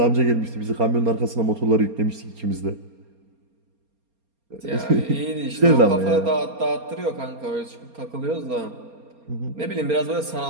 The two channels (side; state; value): left; late; 4.3 ms